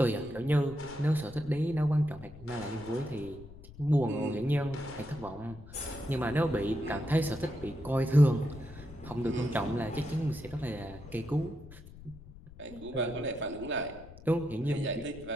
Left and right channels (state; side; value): noise; left; rumble, 17 dB below the sound